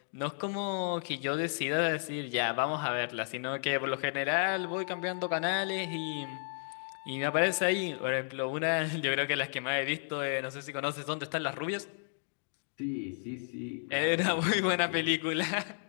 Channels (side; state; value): right; silent; digital silence